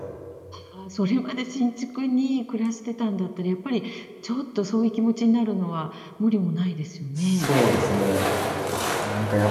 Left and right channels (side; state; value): both; identical; correlation 1.00